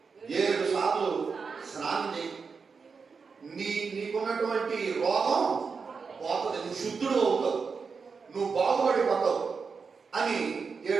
7 సార్లు స్నానం చేయి, నీకున్నటువంటి రోగం పోతుంది, నువ్వు శుద్ధుడు అవుతావు, నువ్వు బాగుపడిపోతావు అని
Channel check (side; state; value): left; quieter; 5.3 dB